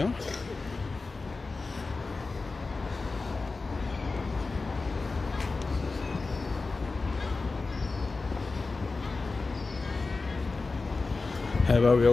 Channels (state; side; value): quieter; right; 3.8 dB